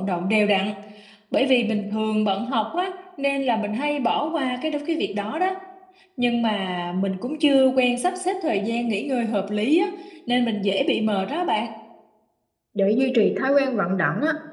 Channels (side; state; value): both; identical; correlation 1.00